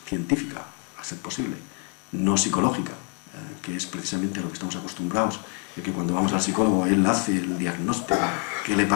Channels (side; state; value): right; quieter; 35.7 dB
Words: científica, a ser posible, no psicológica, que es precisamente a lo que estamos acostumbrados, de que cuando vamos al psicólogo él hace el diagnóstico que le